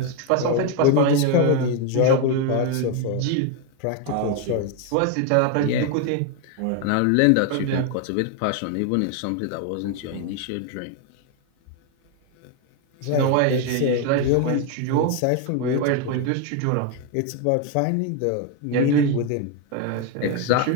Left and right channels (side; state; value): both; different; correlation 0.01